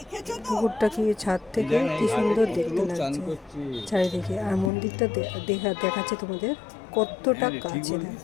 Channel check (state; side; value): drops out; right; at 4.7 s